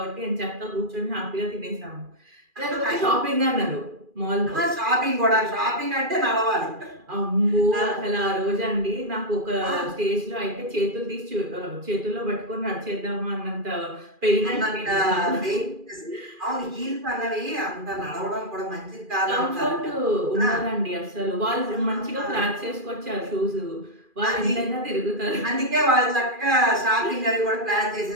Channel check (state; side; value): late; left; 2.4 ms